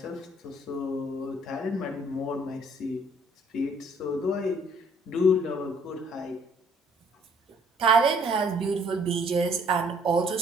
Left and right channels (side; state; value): both; normal; correlation 0.60